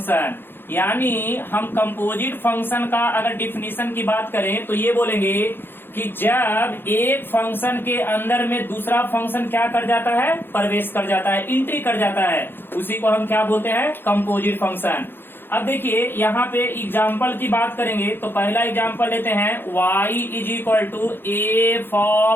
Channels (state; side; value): late; right; 0.10 ms